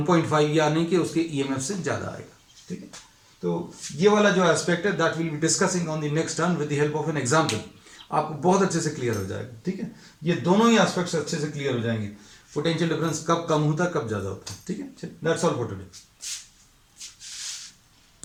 या नहीं कि उसके ईएमएफ से ज्यादा आएगा। ठीक है, तो ये वाला जो एस्पेक्ट है that will be discussing on the next term with the help of an example. आपको बहुत अच्छे से क्लियर हो जाएगा। ठीक है, ये दोनों ही एस्पेक्ट्स अच्छे से क्लियर हो जाएंगे। पोटेंशियल डिफरेंस कब कम होता है, कब ज्यादा होता है। ठीक है, दैट्स ऑल फॉर टुडे।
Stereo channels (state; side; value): identical; both; correlation 1.00